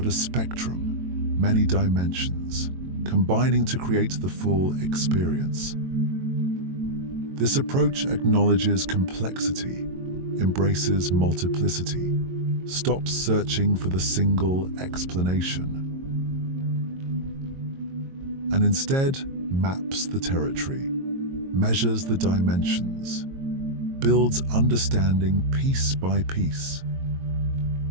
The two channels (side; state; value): left; late; 22 ms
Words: a spectrum, many dimensions, combining to create the full experience. This approach acknowledges complexity, embraces multiplicity, stops searching for the single explanation, and instead maps the territory, measures the dimensions, builds understanding piece by piece.